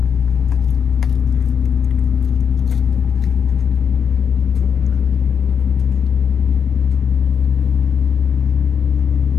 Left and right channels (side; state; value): right; quieter; 7.2 dB